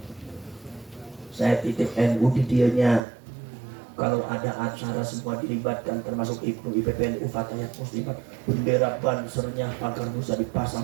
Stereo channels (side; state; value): left; drops out; at 3.0 s